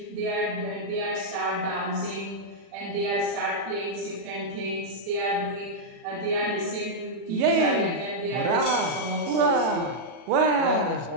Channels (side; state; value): left; late; 40 ms